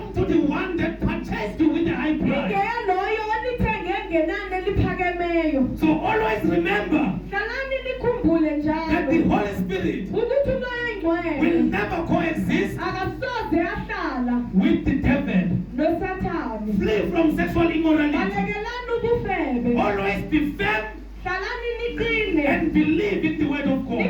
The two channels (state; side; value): identical; both; correlation 1.00